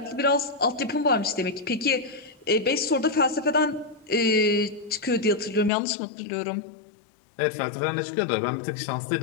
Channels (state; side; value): drops out; right; at 5.7 s